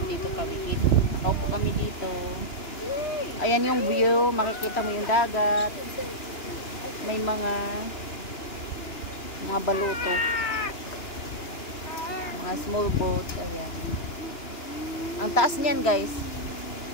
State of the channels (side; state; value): right; late; 2.9 ms